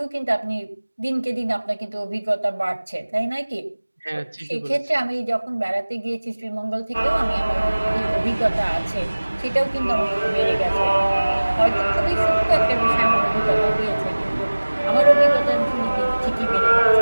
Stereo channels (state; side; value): inverted; both; correlation -1.00